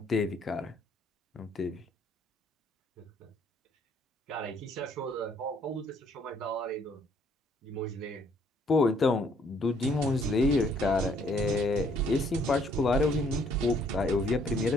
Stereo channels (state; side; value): normal; both; correlation 0.65